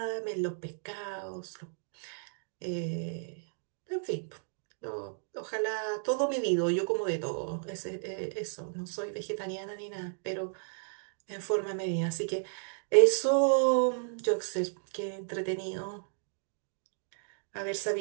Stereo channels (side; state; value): left; silent; digital silence